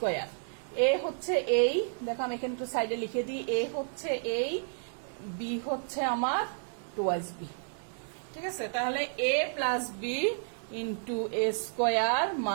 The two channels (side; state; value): left; silent; digital silence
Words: এ হচ্ছে এই, দেখো আমি এখানে একটু সাইডে লিখে দিই, এ হচ্ছে এই, বি হচ্ছে আমার টোয়াইস বি, ঠিক আছে। তাহলে এ plus B into A square